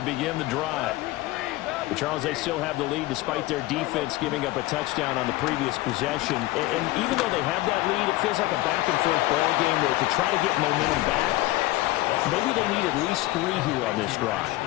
begin the drive. But Charles, they still have the lead despite their defense giving up a touchdown on the previous possession. And even though they have that lead, it feels like a back-and-forth ball game where to try to get momentum back, maybe they need at least 3 here on this drive.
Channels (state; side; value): quieter; right; 18.3 dB